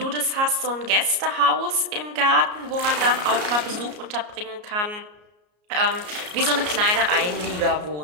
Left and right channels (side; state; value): left; late; 33 ms